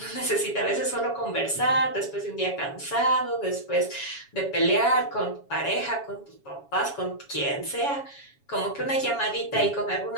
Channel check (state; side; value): late; right; 7.2 ms